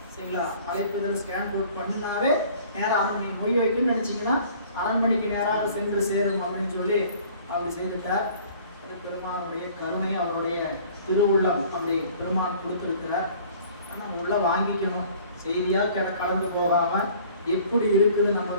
சரிங்களா? அழைப்புதல் ஸ்கேன் கோட் பண்ணினாவே நேராக அரண்மனை வைக்கணும்னு நினச்சிங்கன்னா அரண்மனைக்கு நேராக சென்று சேரும் அப்படின்னு சொல்லி அப்படி செய்துட்டார். பெருமானுடைய கருணை, அவருடைய திருவுள்ளம் அப்படி பெருமான் கொடுத்துருக்கிறார். நம்ம உள்ள வாங்கிக்கணும். செய்தியா கடந்து போகாம எப்படி இருக்குது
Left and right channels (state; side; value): inverted; both; correlation -0.51